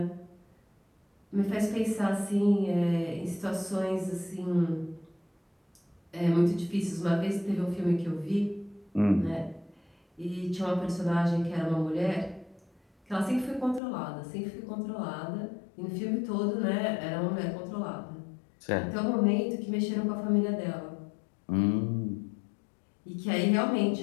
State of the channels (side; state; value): right; drops out; at 13.8 s